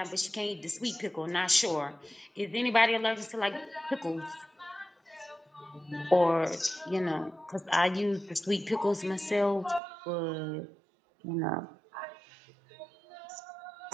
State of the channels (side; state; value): left; drops out; at 9.8 s